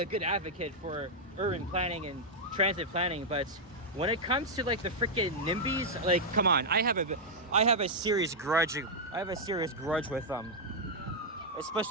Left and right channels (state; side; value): normal; both; correlation -0.04